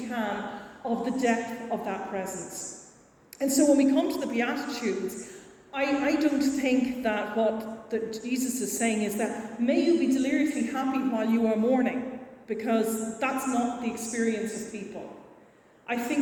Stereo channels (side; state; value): both; identical; correlation 1.00